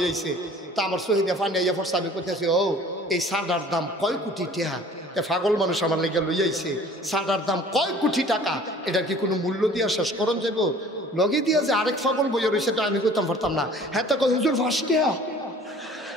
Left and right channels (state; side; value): normal; both; correlation 0.49